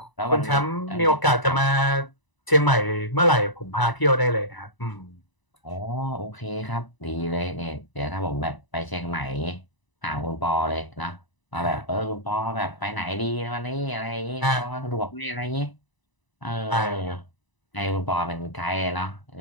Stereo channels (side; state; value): right; late; 1.0 ms